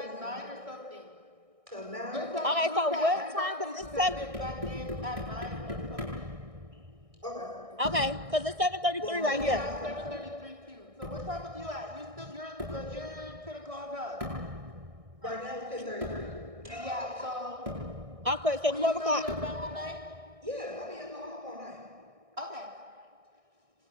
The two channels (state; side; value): late; left; 1.6 ms